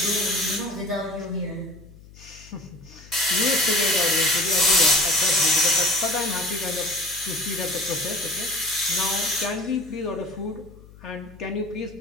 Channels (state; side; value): noise; left; hum, 21 dB below the sound